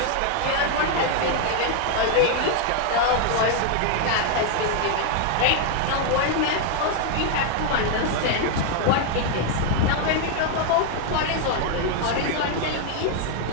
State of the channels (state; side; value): different; both; correlation 0.00